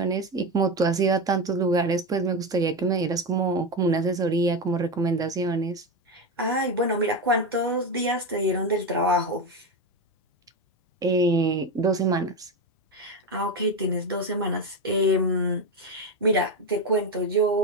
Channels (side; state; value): both; normal; correlation 0.15